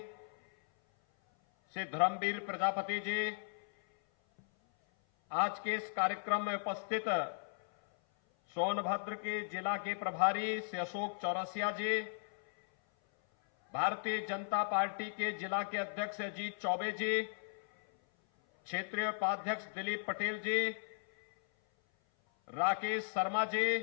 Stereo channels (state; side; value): silent; right; 53 dB below the other